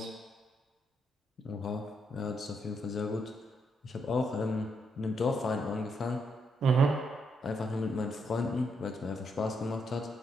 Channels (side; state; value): both; normal; correlation 0.78